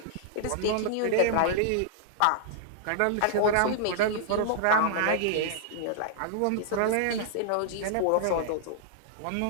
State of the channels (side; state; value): both; different; correlation -0.01